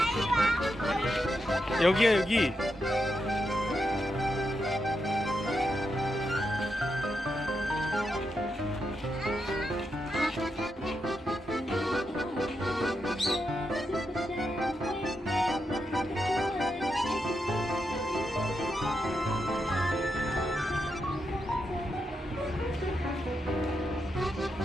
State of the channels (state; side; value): normal; both; correlation 0.84